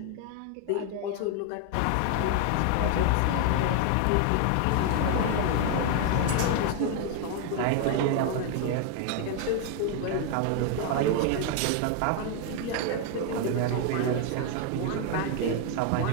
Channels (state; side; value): different; both; correlation 0.00